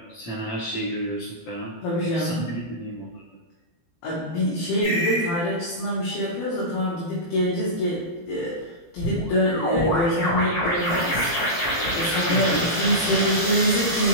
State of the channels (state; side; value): late; right; 17 ms